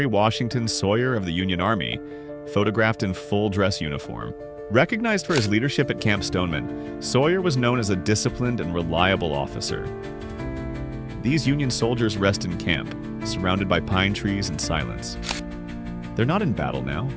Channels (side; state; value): both; identical; correlation 1.00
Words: Washington Sawyer of the Union Army, photographed in full dress uniform. Recognized for his leadership at Camp Stoneman, Sawyer was known as a disciplined and reliable officer. These Union soldiers rest in camp, surrounded by pine trees and silence. They're not in battle now,